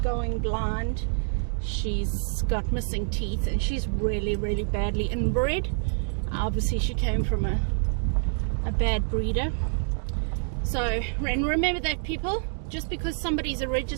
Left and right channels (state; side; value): silent; left; 60 dB below the other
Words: blind. She's got missing teeth. And she's really, really badly inbred. Obviously she came from a bad breeder. So, and remember that, people, just because somebody's a